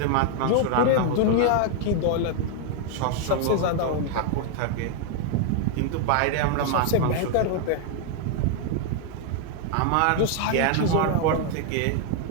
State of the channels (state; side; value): different; both; correlation 0.00